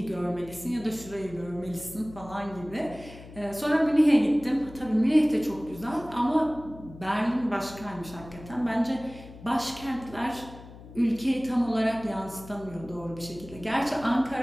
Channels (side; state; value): left; noise; hum, 17 dB below the sound